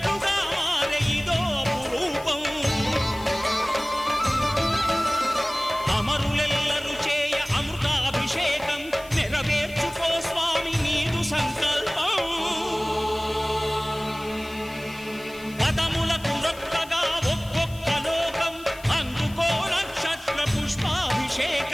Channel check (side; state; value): left; noise; hiss, 20 dB below the sound